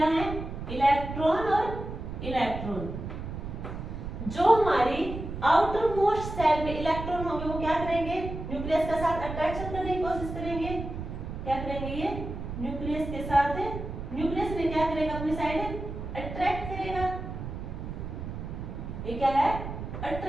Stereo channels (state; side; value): noise; right; rumble, 7 dB below the sound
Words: है? इलेक्ट्रॉन और इलेक्ट्रॉन। जो हमारी आउटर मोस्ट सेल में इलेक्ट्रॉन होंगे वो क्या करेंगे? न्यूक्लियस के साथ अट्रैक्शन करने की कोशिश करेंगे। क्या करेंगे? ये न्यूक्लियस के साथ, न्यूक्लियस में क्या करेगा? अपनी साइड अट्रैक्ट करेगा। ये क्या है?